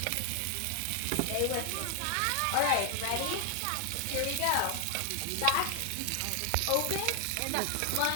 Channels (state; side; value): different; both; correlation 0.00